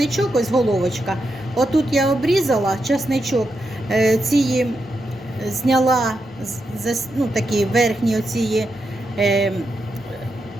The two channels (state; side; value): normal; both; correlation 0.85